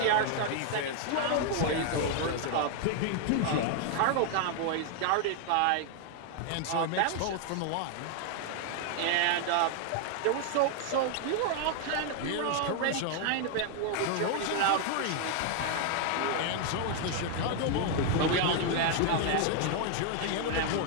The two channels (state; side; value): different; both; correlation 0.00